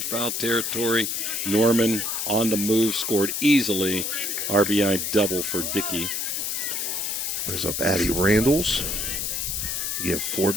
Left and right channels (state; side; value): noise; left; hiss, 1 dB below the sound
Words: foul territory. Norman on the move, scored easily. RBI double for Dickey. There's up Addie Randalls. You have 4